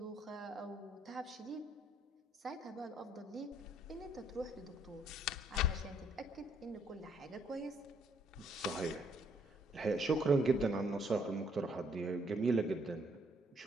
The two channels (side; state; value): both; normal; correlation 0.67